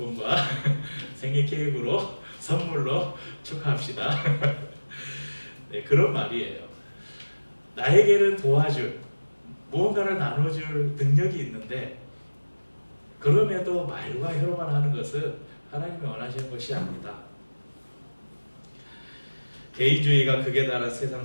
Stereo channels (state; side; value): inverted; both; correlation -1.00